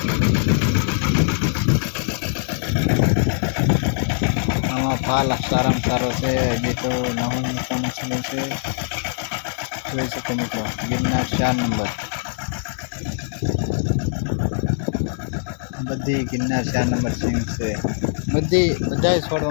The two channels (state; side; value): silent; right; digital silence